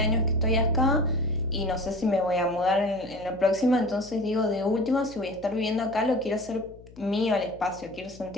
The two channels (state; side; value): noise; left; hum, 21 dB below the sound